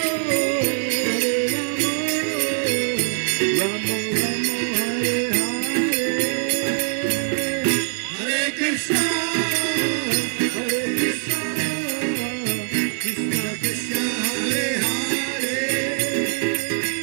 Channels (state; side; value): silent; left; digital silence